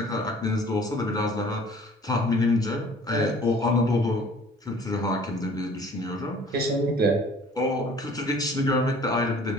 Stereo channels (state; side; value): normal; both; correlation 0.51